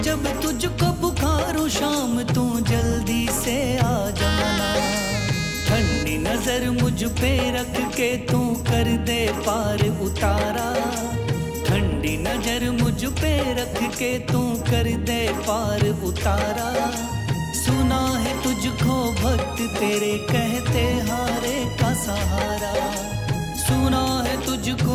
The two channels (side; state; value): both; identical; correlation 1.00